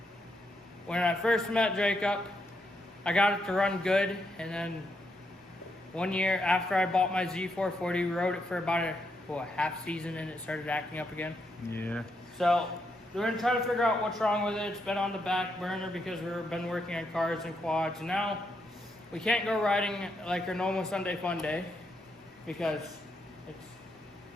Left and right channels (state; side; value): normal; both; correlation 0.80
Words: when I first met Jacob, I got it to run good, and then one year after I bought my Z440, we rode it for about a half season and it started acting up again. Yeah. So we're going to try to figure out what's wrong with it. It's been on the back burner because we've been working on cars and quads. And now we can't go riding like our normal Sunday fun day because it's